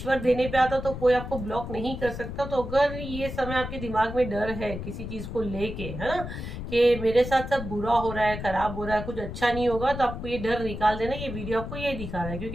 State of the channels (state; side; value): noise; left; rumble, 7 dB below the sound